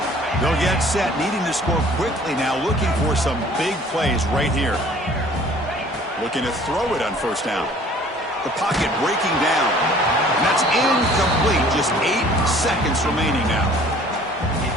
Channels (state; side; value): normal; both; correlation 0.52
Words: They'll get set, needing to score quickly now, looking for some big plays right here. Looking to throw it on first down. The pocket breaking down. And that's incomplete. Just 8 seconds remaining now.